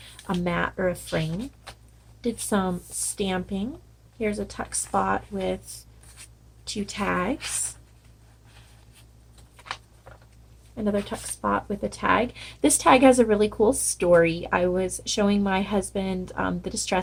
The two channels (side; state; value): both; identical; correlation 1.00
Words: mat or a frame. Did some stamping. Here's a tuck spot with 2 tags. Another tuck spot with a tag. This tag has a really cool story. I was showing my husband the